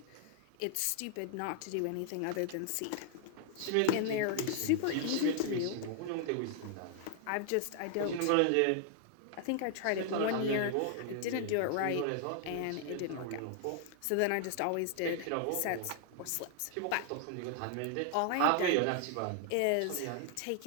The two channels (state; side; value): different; both; correlation 0.00